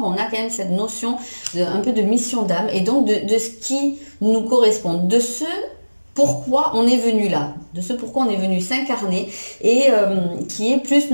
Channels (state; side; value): inverted; both; correlation -1.00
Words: on a quand même cette notion un peu de mission d'âme et donc de ce qui nous correspond, de ce pourquoi on est venu là, de ce pourquoi on est venu s'incarner et qui est plus